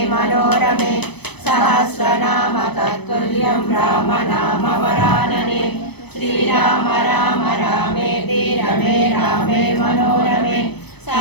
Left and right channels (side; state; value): right; late; 0.98 ms